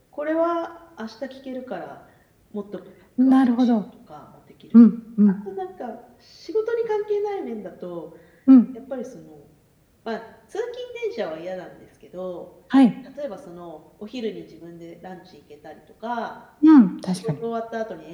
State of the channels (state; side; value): identical; both; correlation 1.00